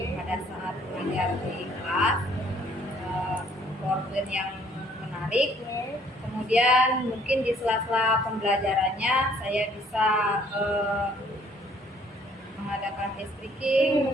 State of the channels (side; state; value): both; normal; correlation 0.61